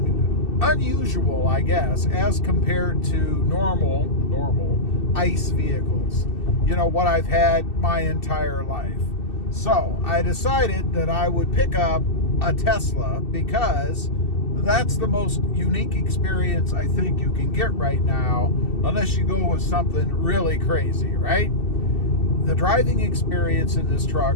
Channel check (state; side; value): late; right; 2.6 ms